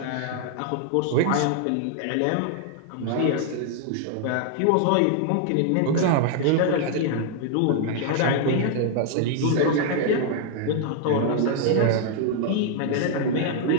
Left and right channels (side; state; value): both; different; correlation 0.00